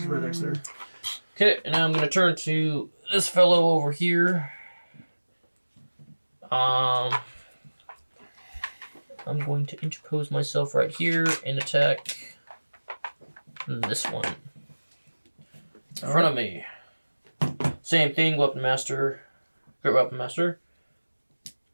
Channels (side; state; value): both; inverted; correlation -1.00